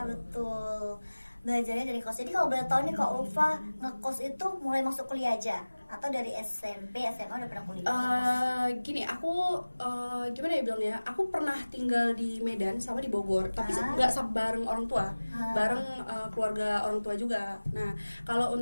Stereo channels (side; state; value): both; inverted; correlation -1.00